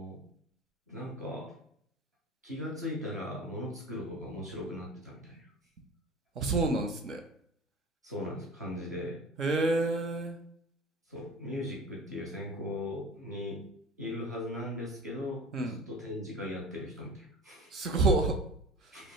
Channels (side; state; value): both; normal; correlation 0.38